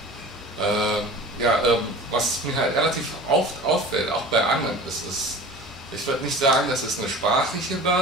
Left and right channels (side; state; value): both; normal; correlation 0.39